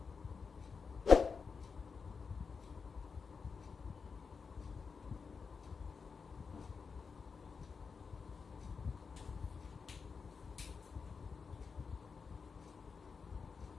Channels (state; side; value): quieter; right; 5.4 dB